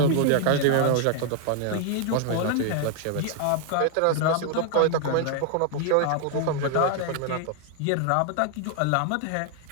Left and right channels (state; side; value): different; both; correlation 0.00